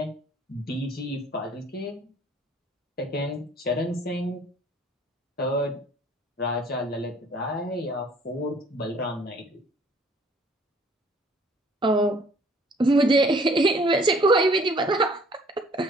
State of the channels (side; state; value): both; normal; correlation 0.56